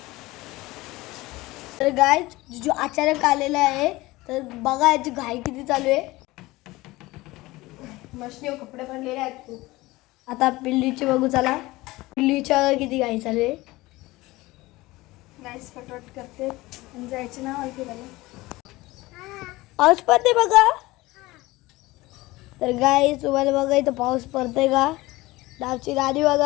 तर गाईज जो अचानक आलेला आहे तर बघा याची घाई किती चालू आहे. मशनीवर कपडे भरलेले आहेत खूप. आता पिल्लीची बघू चला. पिल्लीच्या किती घाई चालू आहे. नाईस फटफट करते आणि जायचे ना मला फिरायला. पाऊस पडते बघा. तर गाईज तुम्हाला बघा इथं पाऊस पडतोय का. डावची गाडी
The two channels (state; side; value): quieter; right; 19.9 dB